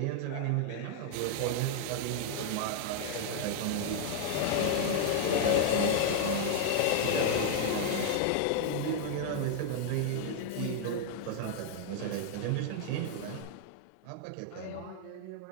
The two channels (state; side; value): different; both; correlation 0.00